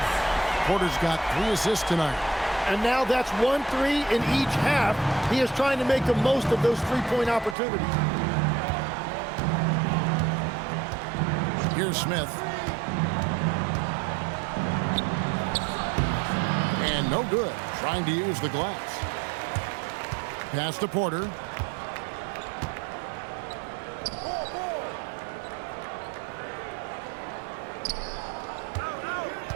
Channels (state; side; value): drops out; left; at 7.6 s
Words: Porter's got 3 assists tonight. And now that's 1-3 in each half. He is trying to make the most of those three-point opportunities. Here's Smith. And no good, trying to use the glass. Pass to Porter.